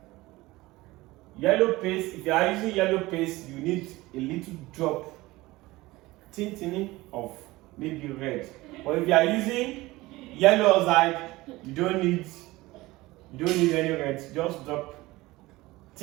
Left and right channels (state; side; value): quieter; left; 19.6 dB